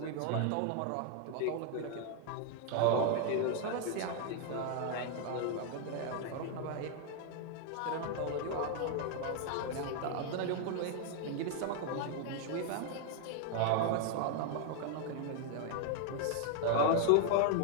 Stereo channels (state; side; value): different; both; correlation 0.00